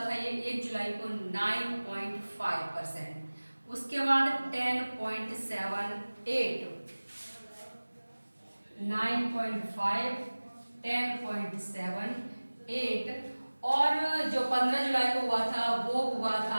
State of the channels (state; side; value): inverted; both; correlation -1.00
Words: ये 1 जुलाई को 9.5%, उसके बाद 10.78, 9.5, 10.78, और जो 15 जुलाई को हुआ था वो हुआ